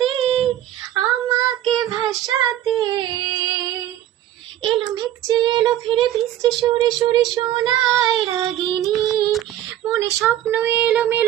আমাকে ভাসাতে এলো মেঘ এলো ফিরে বৃষ্টি সুরে সুরে শোনায় রাগিনী মনে স্বপ্ন এলো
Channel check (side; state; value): left; quieter; 12.6 dB